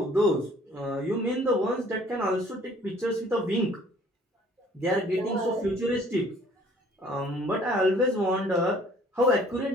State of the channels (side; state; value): both; normal; correlation 0.56